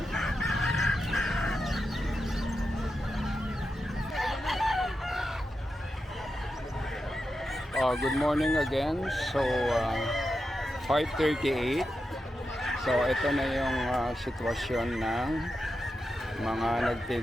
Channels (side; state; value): both; normal; correlation 0.89